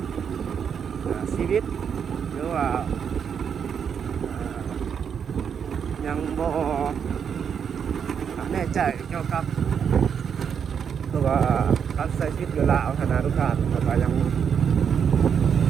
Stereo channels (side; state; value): left; quieter; 7.4 dB